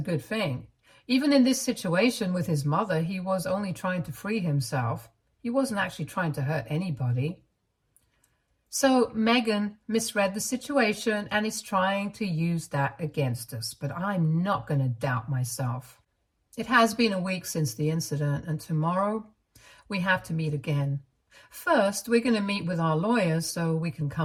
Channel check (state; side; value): identical; both; correlation 1.00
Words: good thing. Even in this situation with his mother, he was only trying to free himself. He wasn't actually trying to hurt anybody. So Megan misread the situation and is trying to use that against us, but I'm not going to doubt myself. It has been a week since the incident, and tomorrow we have to meet again. First, we're going to meet with our lawyers so we can